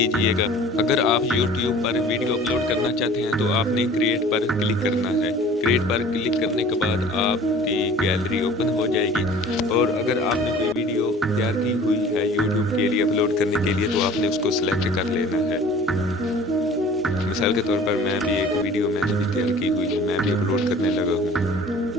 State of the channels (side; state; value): both; normal; correlation 0.46